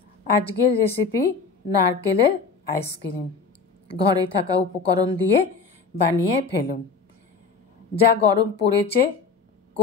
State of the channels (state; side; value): quieter; right; 4.9 dB